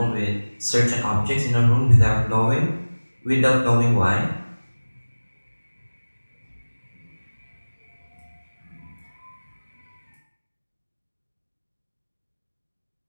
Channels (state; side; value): inverted; both; correlation -1.00